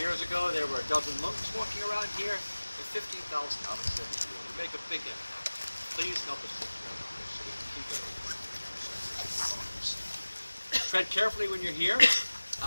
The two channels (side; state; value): both; inverted; correlation -1.00